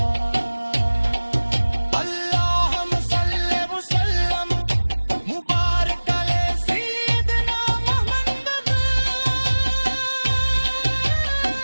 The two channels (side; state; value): both; inverted; correlation -1.00